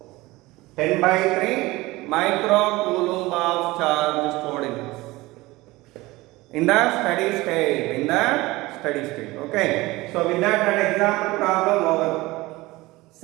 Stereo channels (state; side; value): quieter; left; 20.2 dB